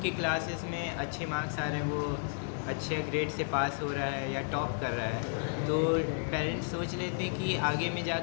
के क्लासेस में अच्छे मार्क्स आ रहे हैं, वो अच्छे ग्रेड से पास हो रहा है या टॉप कर रहा है, तो पेरेंट्स सोच लेते हैं कि आगे में जा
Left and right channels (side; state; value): right; silent; 56 dB below the other